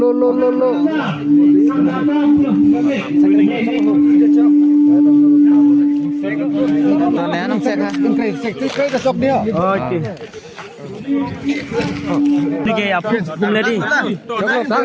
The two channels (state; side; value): identical; both; correlation 1.00